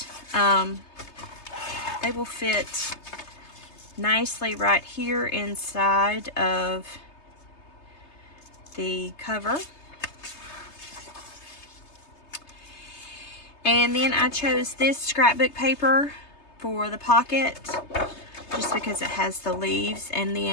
they will fit nicely right here inside of the cover. And then I chose this scrapbook paper for the pocket, just because it has the leaves, and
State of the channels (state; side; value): late; right; 3.3 ms